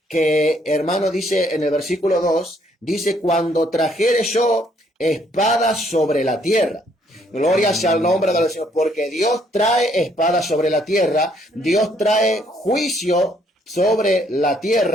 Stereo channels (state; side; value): normal; both; correlation 0.67